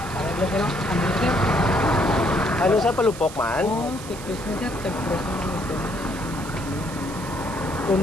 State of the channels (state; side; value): noise; right; hiss, 15 dB below the sound